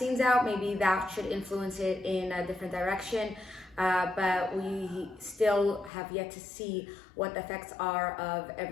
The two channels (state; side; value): drops out; right; at 5.9 s